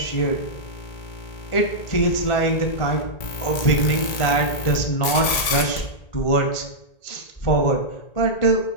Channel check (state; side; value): late; right; 1.8 ms